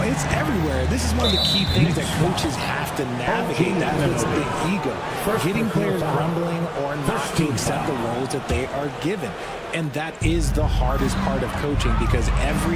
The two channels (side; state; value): both; identical; correlation 1.00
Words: it's everywhere. This is one of the key things that coaches have to navigate. That puts the ego. Getting players grumbling or not to accept the roles that they are given. And that is the hardest part of coaching because